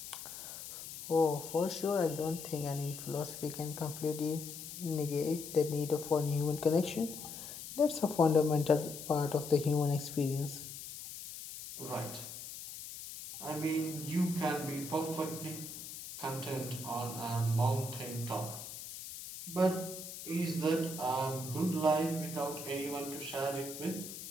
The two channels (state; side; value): noise; left; hiss, 10 dB below the sound